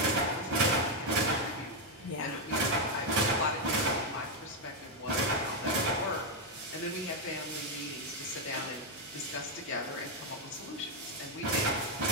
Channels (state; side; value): normal; both; correlation 0.02